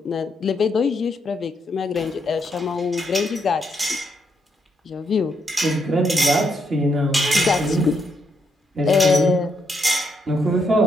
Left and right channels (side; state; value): both; normal; correlation 0.77